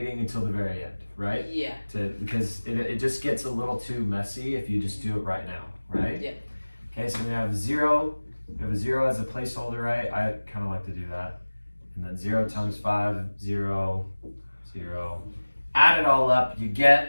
until the very end, right? Yeah. Because it just gets a little too messy if you just do it right now, right? Yeah. Okay, so we have 0. We have a 0 as a placeholder, right? I kind of like to do that. And then 0 times 5, 0, 0. Add it all up, you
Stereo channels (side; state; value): both; inverted; correlation -1.00